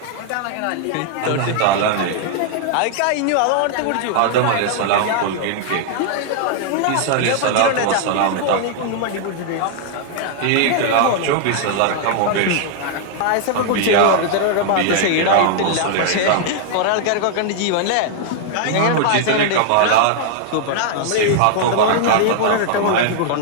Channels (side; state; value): both; different; correlation 0.00